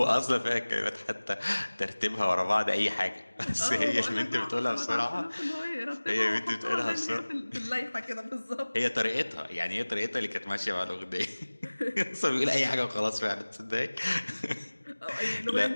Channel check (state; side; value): inverted; both; correlation -1.00